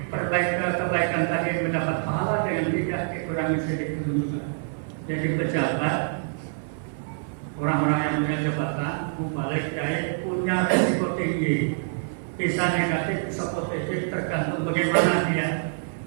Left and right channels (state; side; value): silent; left; 61 dB below the other